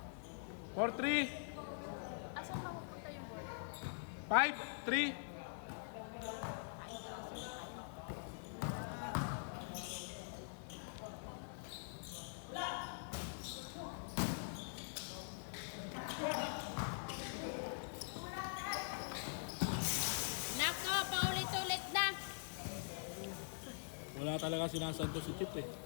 4-3. Asan ka pupunta yung 5-3. Nako, paulit-ulit na. Wala talaga sinasanto si Chip eh.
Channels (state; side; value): silent; right; digital silence